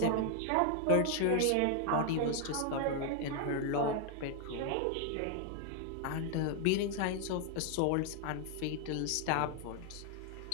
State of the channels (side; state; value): both; different; correlation 0.00